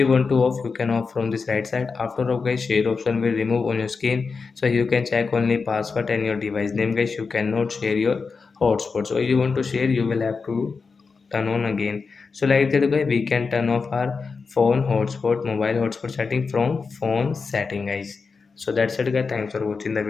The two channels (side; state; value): right; quieter; 4.8 dB